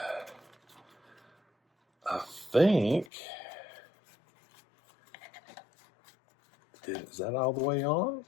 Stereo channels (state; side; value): drops out; right; at 3.1 s